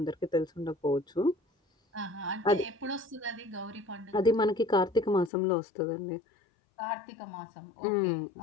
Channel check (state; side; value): drops out; right; at 5.3 s